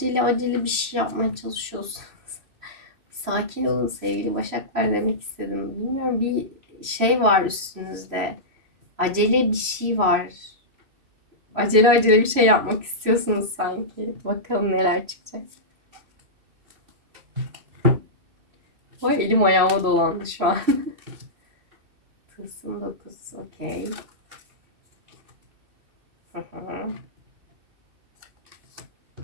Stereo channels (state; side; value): late; left; 3.0 ms